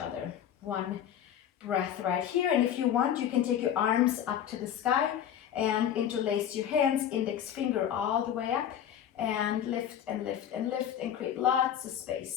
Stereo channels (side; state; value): right; quieter; 9.8 dB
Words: 1 breath right here, and if you want, you can take your arms up to the sky and interlace your hands, index finger all the way up, and lift and lift and lift and create lots of